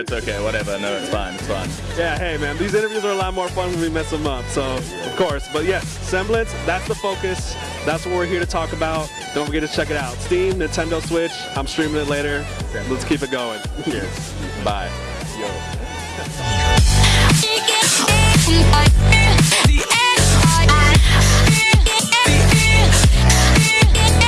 okay, whatever. No, it's fine. Yeah, hey man, these interviews are a lot more fun when we mess them up, so of course. But yes, Assemblance, that's the focus. That's what we're here to talk about. Don't forget to check it out. Steam, Nintendo Switch, I'm streaming it later. Let's keep it going. Cheers. Bye. Yo.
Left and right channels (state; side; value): identical; both; correlation 1.00